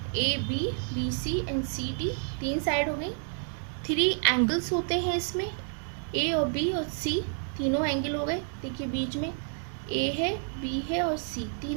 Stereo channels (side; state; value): left; silent; 58 dB below the other